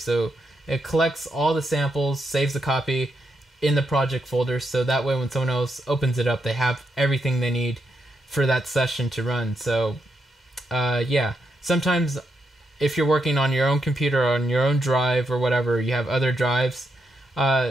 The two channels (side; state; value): both; normal; correlation 0.81